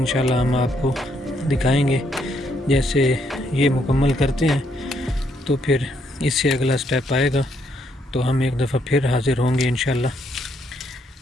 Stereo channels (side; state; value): both; normal; correlation 0.73